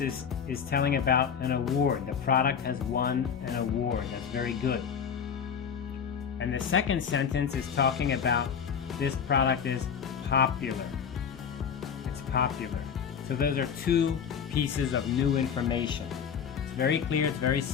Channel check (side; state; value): right; quieter; 7.2 dB